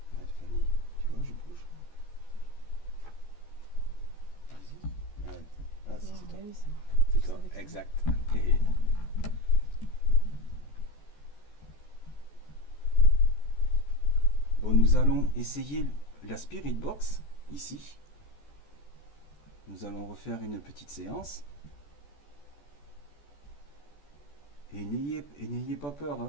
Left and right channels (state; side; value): late; right; 14 ms